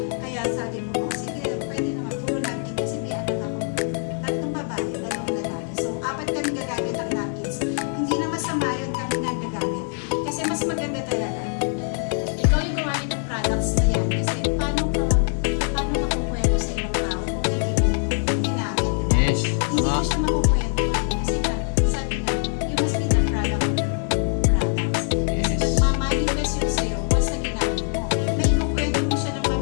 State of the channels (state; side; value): silent; right; 56 dB below the other